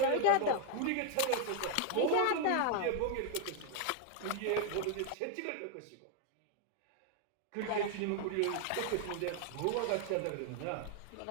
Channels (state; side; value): different; both; correlation 0.00